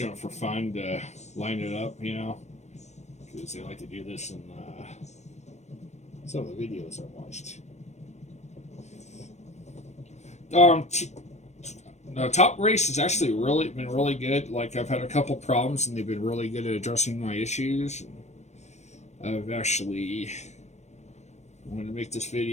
it for fun to line it up, you know, because they like to do this in some of the videos I watched. The top race has actually been really good. Like, I've had a couple problems, and they've been really good at addressing my issues. I've actually wanted to make this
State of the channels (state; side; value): late; right; 0.33 ms